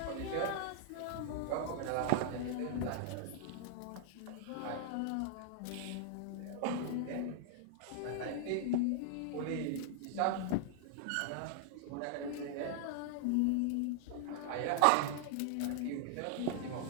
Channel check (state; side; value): different; both; correlation 0.00